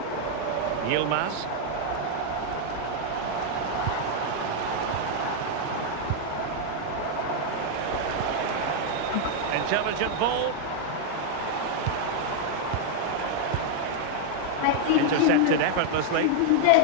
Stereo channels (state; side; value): different; both; correlation 0.00